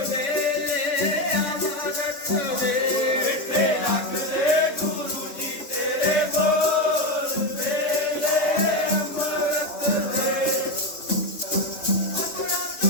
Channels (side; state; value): right; late; 3.3 ms